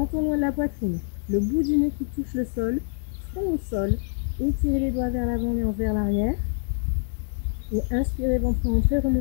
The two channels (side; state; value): right; silent; 60 dB below the other